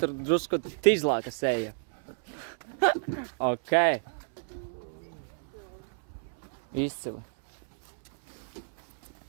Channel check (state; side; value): silent; left; 58 dB below the other